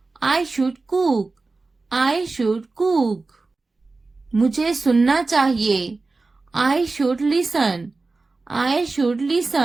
I should cook. I should cook. मुझे सुनना चाहिए। I should listen. I should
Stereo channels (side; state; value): left; quieter; 3.7 dB